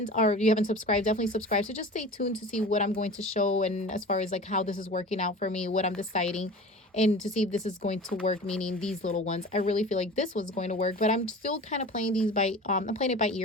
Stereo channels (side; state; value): both; normal; correlation 0.37